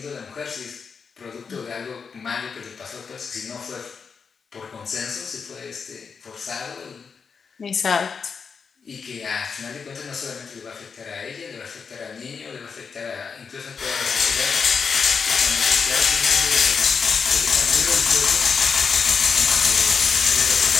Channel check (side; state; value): right; quieter; 5.8 dB